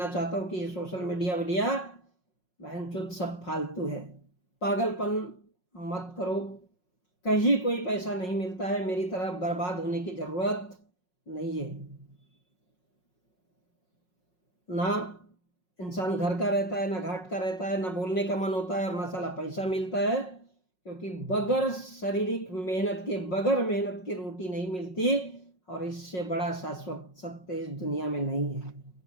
चाहता हूँ कि ये सोशल मीडिया वीडिया बहनचोद सब फालतू है। पागलपन मत करो। कहीं कोई पैसा नहीं मिलता है, मेरी तरह बर्बाद होने की जरूरत नहीं है। ना इंसान घर का रहता है, ना घाट का रहता है, ना बोलने का मन होता है और ना साला पैसा मिलता है। क्योंकि बगैर शारीरिक मेहनत के, बगैर मेहनत के रोटी नहीं मिलती और इससे बड़ा शाश्वत सत्य इस दुनिया में नहीं है।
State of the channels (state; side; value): late; right; 5.5 ms